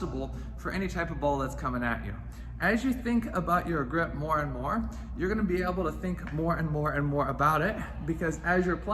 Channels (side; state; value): both; identical; correlation 1.00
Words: for any type of ball that's coming at you. As you think about your grip more and more, you're gonna be able to think more and more and more about it, because as you're